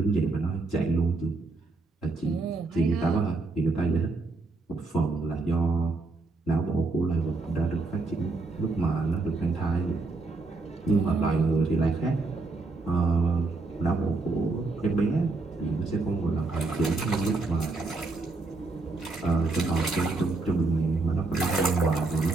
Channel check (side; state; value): left; quieter; 3.6 dB